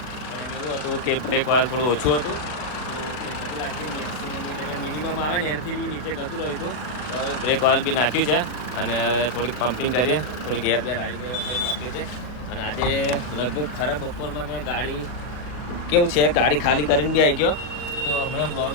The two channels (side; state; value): right; late; 40 ms